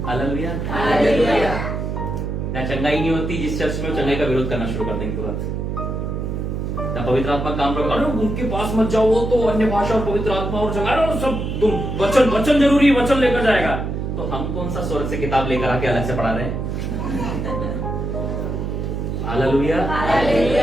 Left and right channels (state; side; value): noise; right; hum, 3 dB below the sound